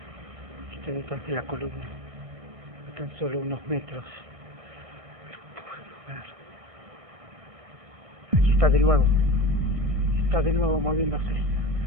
Está detrás de la columna, a tan solo unos metros. Pero puedo ver. Aquí está de nuevo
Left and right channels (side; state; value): left; late; 1.6 ms